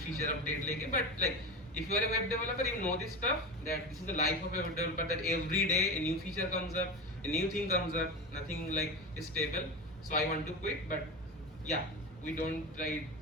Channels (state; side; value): normal; both; correlation 0.24